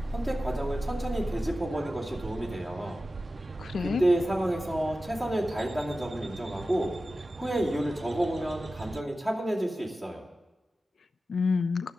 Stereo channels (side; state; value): both; normal; correlation 0.94